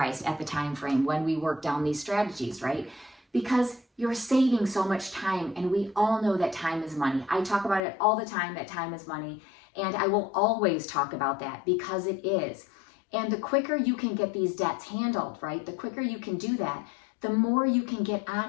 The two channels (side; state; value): right; drops out; at 7.8 s